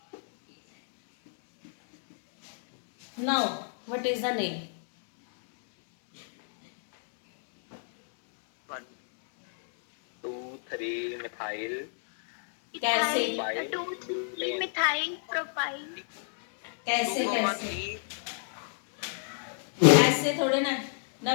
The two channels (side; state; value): right; silent; digital silence